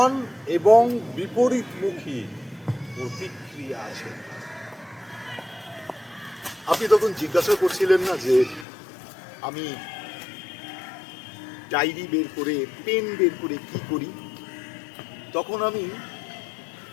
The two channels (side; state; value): right; drops out; at 8.7 s